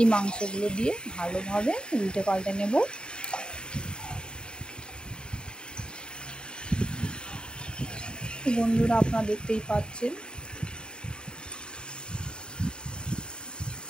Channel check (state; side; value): late; right; 0.050 ms